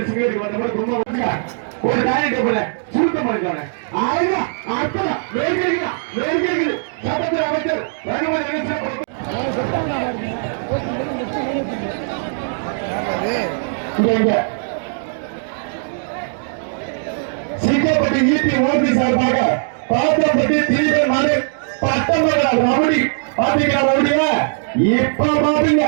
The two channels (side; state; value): left; silent; digital silence